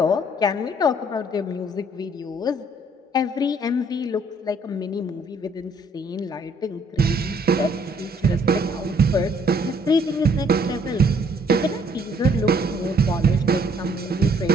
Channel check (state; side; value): normal; both; correlation 0.63